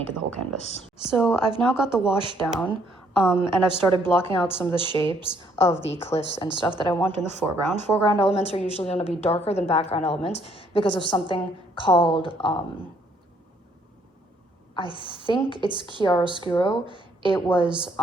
the whole canvas. So I've now got the wash down, and I've started blocking out some of the shapes of the cliffs and stuff that I want in the foreground. Foreground elements are usually going to be darker than background elements because of something called, I think it's chiaroscuro. It was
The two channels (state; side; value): normal; both; correlation 0.67